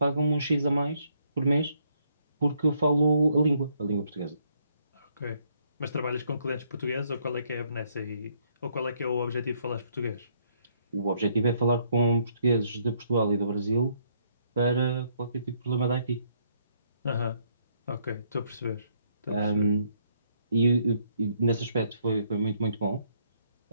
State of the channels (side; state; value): both; inverted; correlation -0.70